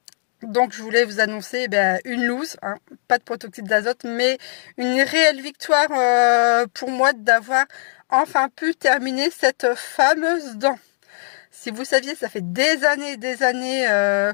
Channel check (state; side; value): silent; right; digital silence